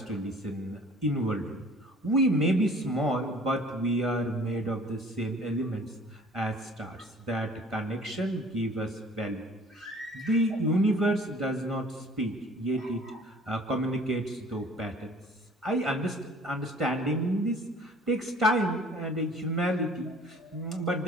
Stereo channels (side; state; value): both; normal; correlation 0.50